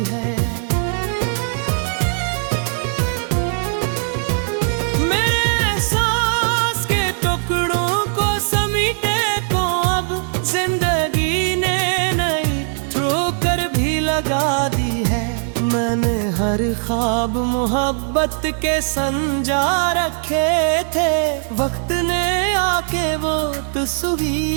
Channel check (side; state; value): left; silent; digital silence